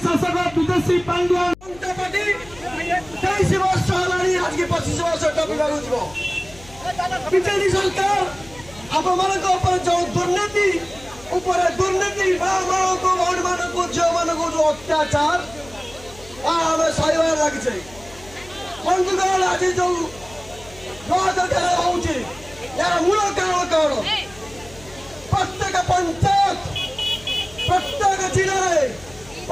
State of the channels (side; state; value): left; noise; hum, 21 dB below the sound